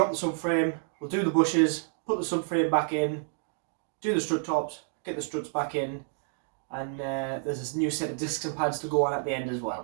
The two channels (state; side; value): silent; left; 58 dB below the other